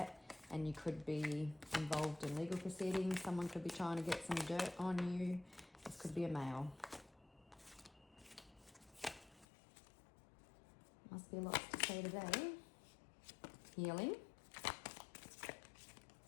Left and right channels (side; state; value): right; drops out; at 9.5 s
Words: and you could be involved in legal proceedings. Someone could be trying to get some dirt on you. This could be a male. Must be lots to say today. Healing.